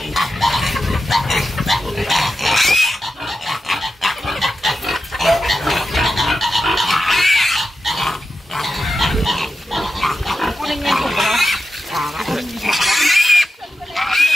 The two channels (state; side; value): normal; both; correlation 0.91